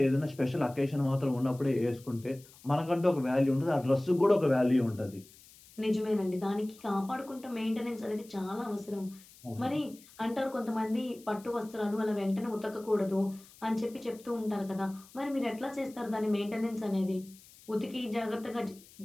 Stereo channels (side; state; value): left; noise; hiss, 23 dB below the sound